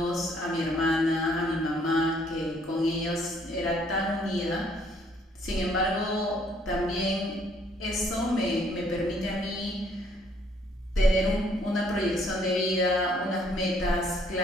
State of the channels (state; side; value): normal; both; correlation 0.65